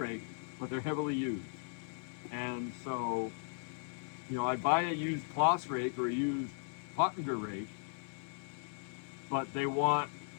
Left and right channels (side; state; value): right; silent; 53 dB below the other